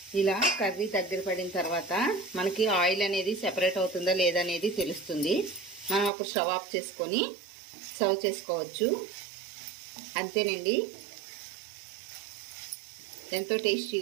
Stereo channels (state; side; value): drops out; left; at 6.1 s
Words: ఇలా కర్రీ దగ్గర పడిన తర్వాత మనకి ఆయిల్ అనేది సెపరేట్ అవుతుందా లేదా అనేది తెలుస్తుంది. మనం అప్పుడు స్టవ్ ఆఫ్ చేసుకొని సర్వ్ చేసుకోవచ్చు. అంతేనండి, ఎంతో